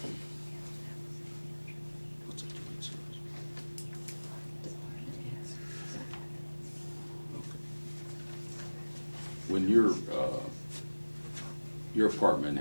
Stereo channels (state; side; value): inverted; both; correlation -1.00